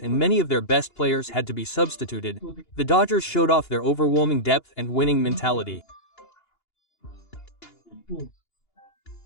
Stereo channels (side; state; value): right; late; 2.8 ms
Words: and many of their best players had to be substituted, the Dodgers showed off their overwhelming depth and winning mentality.